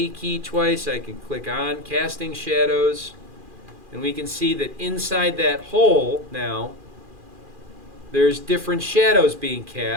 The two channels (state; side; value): late; left; 2.4 ms